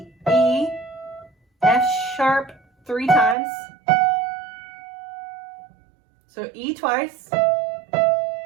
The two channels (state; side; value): drops out; left; at 3.4 s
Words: E, F sharp 3 times. So E twice,